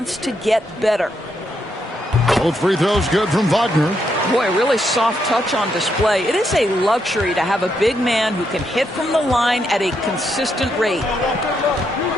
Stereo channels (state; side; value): normal; both; correlation 0.79